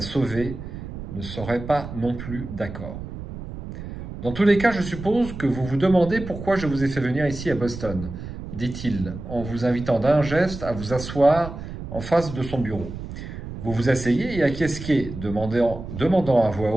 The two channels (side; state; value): right; noise; rumble, 10 dB below the sound